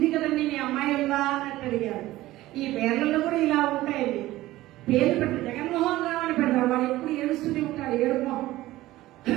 కదండి, మీ అమ్మాయి ఉందా అని అడిగాడు. ఈ పేర్లలో కూడా ఇలా ఉంటాయండి. పేరు పెట్టి జగన్మోహన్ రావు అని పెడతాడు. వాడు ఎప్పుడు ఏడుస్తూనే ఉంటాడు, ఏడుపు మొహం.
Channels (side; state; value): left; quieter; 16.6 dB